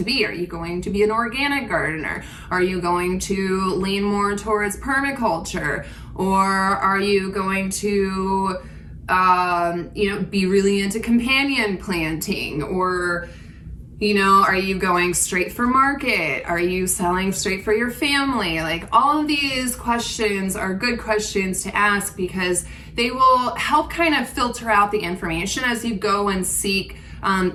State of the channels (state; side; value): identical; both; correlation 1.00